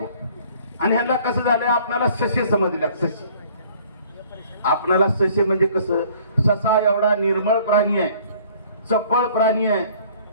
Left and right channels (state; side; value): inverted; both; correlation -0.55